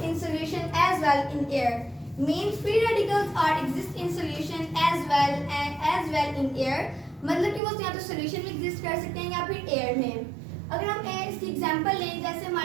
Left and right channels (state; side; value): drops out; left; at 7.6 s